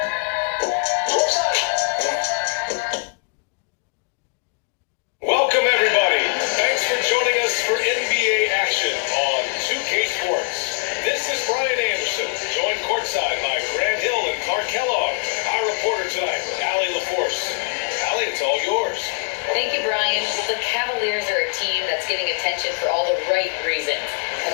Welcome everybody. Thanks for joining us for NBA action on 2K Sports. This is Brian Anderson, joined courtside by Grant Hill and Clark Kellogg. Our reporter tonight, Allie LaForce. Allie, it's all yours. Thank you, Brian. The Cavaliers are a team that's getting attention for all the right reasons.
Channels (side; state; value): right; quieter; 34.3 dB